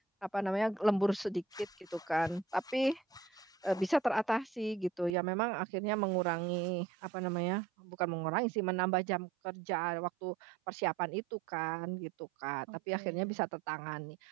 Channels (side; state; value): left; drops out; at 5.2 s